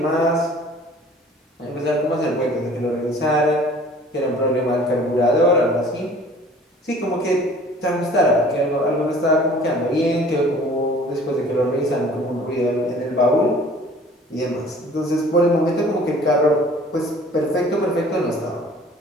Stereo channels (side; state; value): both; normal; correlation 0.50